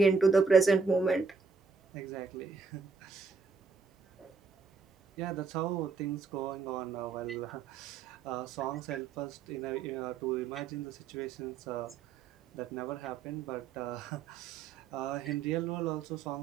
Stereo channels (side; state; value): left; quieter; 5.0 dB